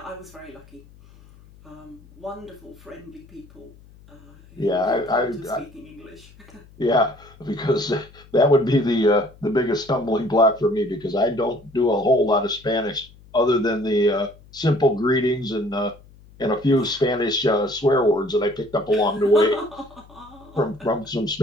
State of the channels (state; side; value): noise; left; hum, 24 dB below the sound